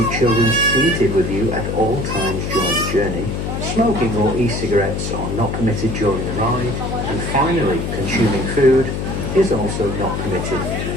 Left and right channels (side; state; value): left; noise; hum, 3 dB below the sound